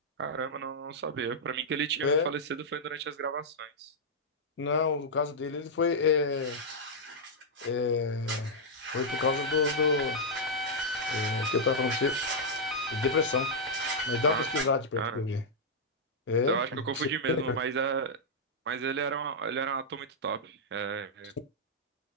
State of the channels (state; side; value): normal; both; correlation -0.07